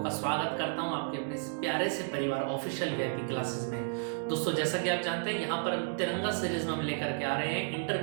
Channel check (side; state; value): left; silent; digital silence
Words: का स्वागत करता हूं आपके अपने इस प्यारे से परिवार ऑफिशियल वीआईपी क्लासेस में। दोस्तों, जैसा कि आप जानते हैं, यहाँ पर हम तिरंगा सीरीज में हम लेकर के आ रहे हैं